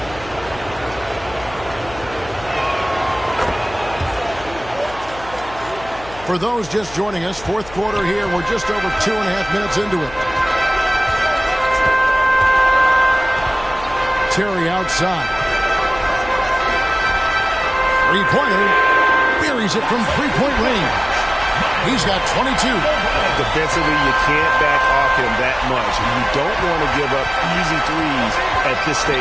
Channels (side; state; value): left; noise; hum, 18 dB below the sound